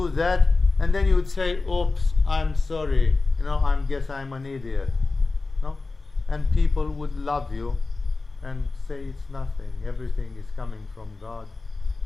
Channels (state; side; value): quieter; right; 3.7 dB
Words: that, and then you would say, oops, I'm sorry, I guess I'm an idiot. No? And people would love you and say it's nothing, everything is coming from God,